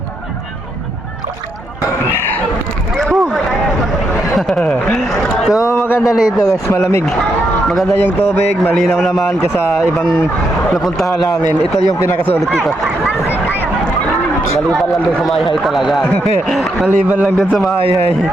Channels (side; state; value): both; normal; correlation 0.80